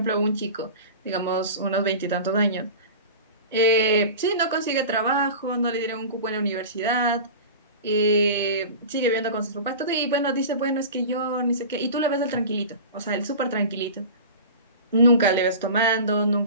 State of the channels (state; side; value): inverted; both; correlation -0.34